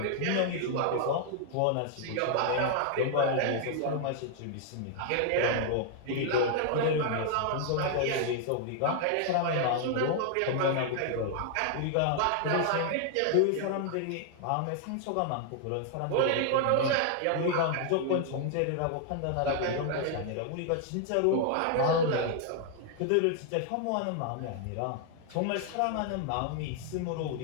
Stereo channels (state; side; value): different; both; correlation 0.00